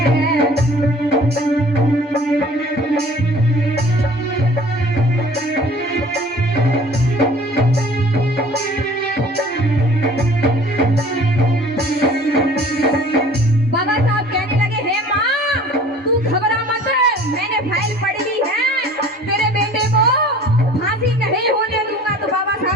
बाबा साहब कहने लगे, हे माँ तू घबरा मत, मैंने फाइल पढ़ ली है, तेरे बेटे को फांसी नहीं होने दूंगा। तो बाबा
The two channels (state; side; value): normal; both; correlation 0.48